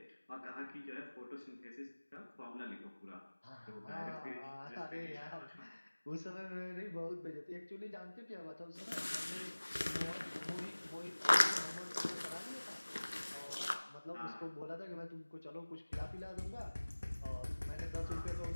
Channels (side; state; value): both; inverted; correlation -1.00